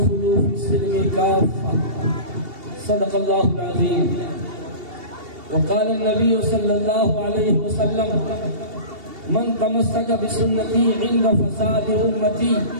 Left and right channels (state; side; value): late; left; 2.7 ms